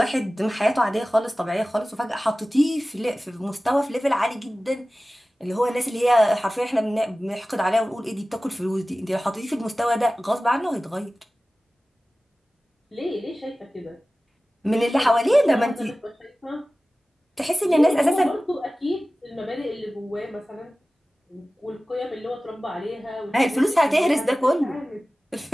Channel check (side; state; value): both; normal; correlation 0.97